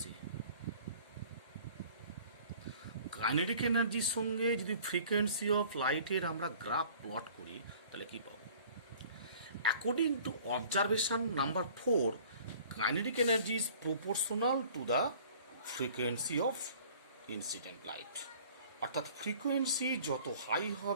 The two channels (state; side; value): inverted; both; correlation -0.50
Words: Kinetic এনার্জির সঙ্গে যদি frequency of লাইটের আমরা গ্রাফ প্লট করি তাহলে কি পাবো? According to observation number 4, kinetic energy is proportional to the frequency of incident light. অর্থাৎ ফ্রিকোয়েন্সি যত হাই